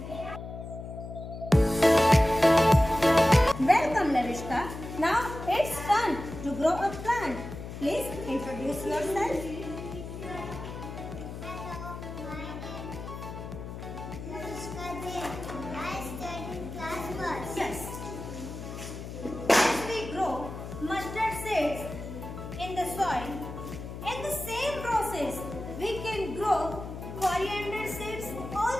Welcome Lavishka. Now it's time to grow a plant. Please introduce yourself. Hello, my name is Lavishka Jain. I study in class first. Yes. As we grow mustard seeds in the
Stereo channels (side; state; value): left; noise; hum, 9 dB below the sound